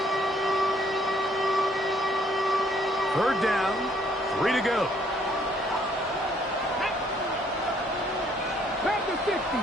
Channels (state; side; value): normal; both; correlation 0.65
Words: Third down, 3 to go.